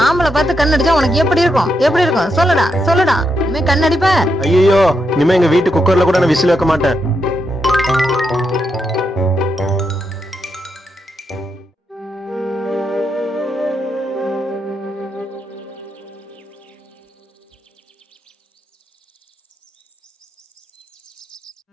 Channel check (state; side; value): normal; both; correlation 0.82